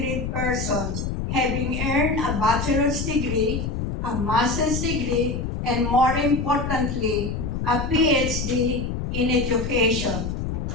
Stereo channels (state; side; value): noise; left; rumble, 3 dB below the sound